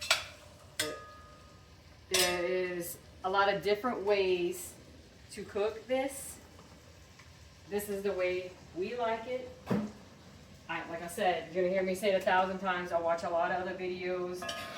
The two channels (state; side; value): identical; both; correlation 1.00